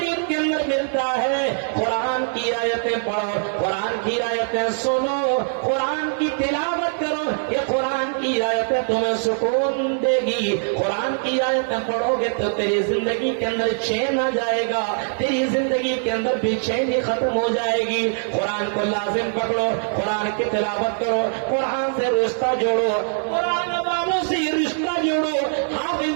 کے اندر ملتا ہے۔ قرآن کی آیتیں پڑھو، قرآن کی آیتیں سنو، قرآن کی تلاوت کرو، یہ قرآن کی آیتیں تمہیں سکون دے گی۔ قرآن کی آیتیں پڑھو گے تو تیری زندگی کے اندر چین آ جائے گا، تیری زندگی کے اندر بے چینی ختم ہو جائے گی۔ قرآن کو لازم پکڑو، قرآن کی تلاوت کرو، قرآن سے رشتہ جوڑو، قرآن والوں سے رشتہ جوڑو،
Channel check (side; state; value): left; silent; 64 dB below the other